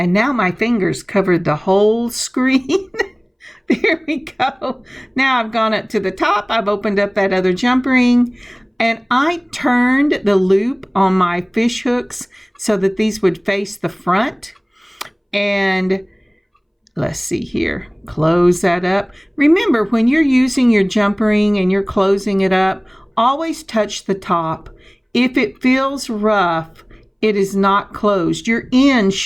now my fingers covered the whole screen. There we go. Now I've gone up to the top. I've opened up that other jump ring, and I turned the loop on my fish hooks so that these would face the front. And let's see here. Close that up. Remember, when you're using your jump ring and you're closing it up, always touch the top. If it feels rough, it is not closed. Your ends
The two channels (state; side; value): identical; both; correlation 1.00